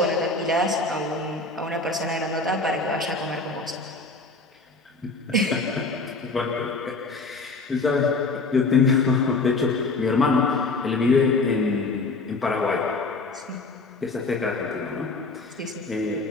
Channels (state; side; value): quieter; right; 3.5 dB